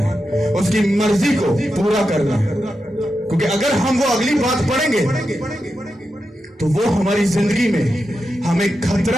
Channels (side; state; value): both; normal; correlation 0.88